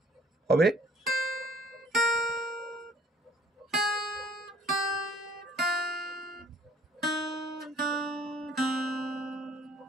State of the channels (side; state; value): both; normal; correlation 0.57